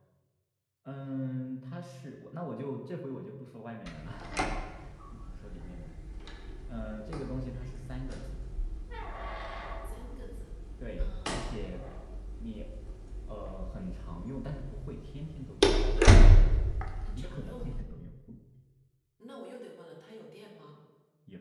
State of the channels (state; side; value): identical; both; correlation 1.00